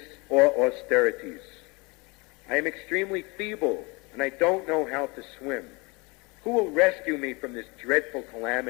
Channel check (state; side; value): quieter; right; 27.4 dB